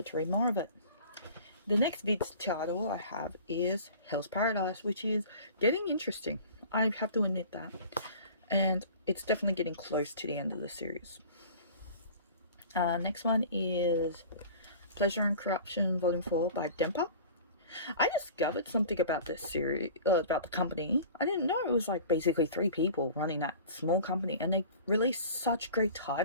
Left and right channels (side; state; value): both; inverted; correlation -0.42